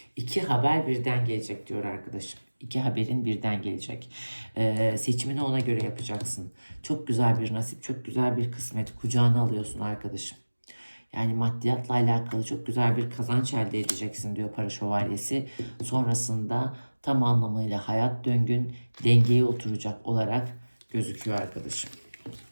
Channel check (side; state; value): both; inverted; correlation -1.00